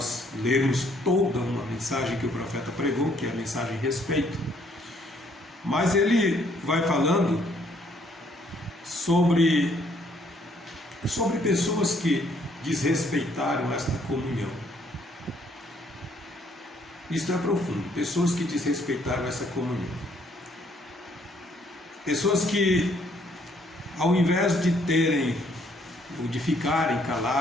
lermos toda uma mensagem que o profeta pregou, que é a mensagem respeito. Mas ele vai falando sobre pessoas que desrespeitaram esta comunhão. Isto é profundo. Pessoas que desrespeitaram essa comunhão. Pessoas que, ao invés de terem, ou de ficarem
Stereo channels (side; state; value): both; normal; correlation 0.66